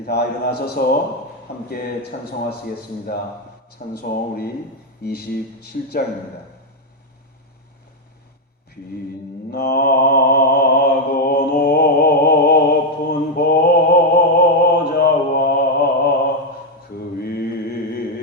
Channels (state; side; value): normal; both; correlation 0.03